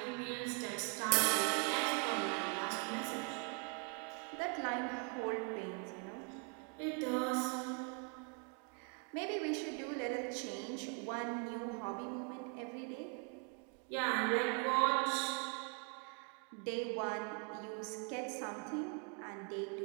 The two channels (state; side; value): quieter; left; 36.4 dB